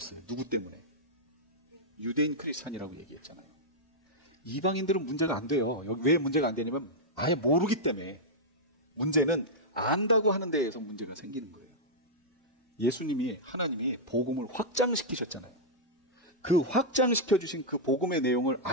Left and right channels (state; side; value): normal; both; correlation -0.07